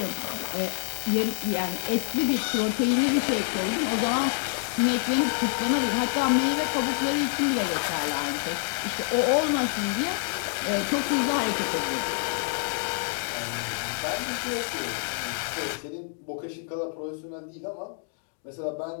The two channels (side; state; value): right; silent; digital silence